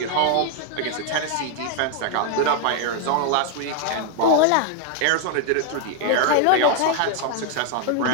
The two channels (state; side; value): different; both; correlation 0.01